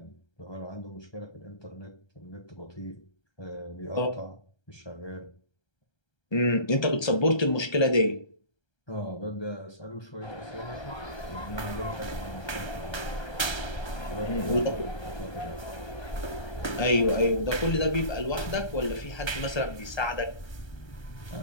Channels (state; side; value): late; right; 1.3 ms